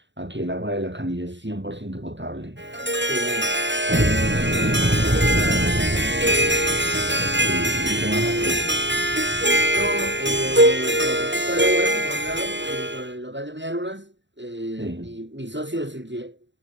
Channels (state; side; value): late; left; 0.53 ms